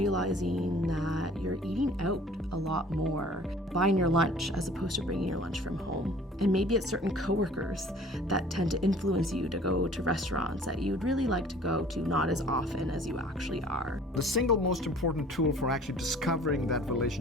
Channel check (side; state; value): both; normal; correlation 0.50